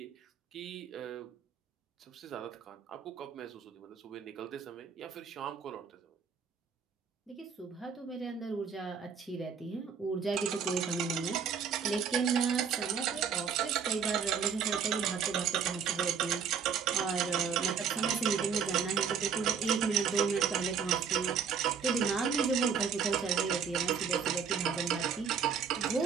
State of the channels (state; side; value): quieter; left; 6.6 dB